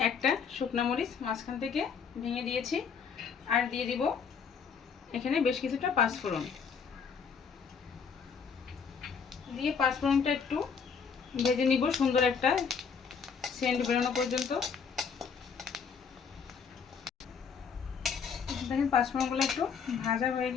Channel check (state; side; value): quieter; right; 6.2 dB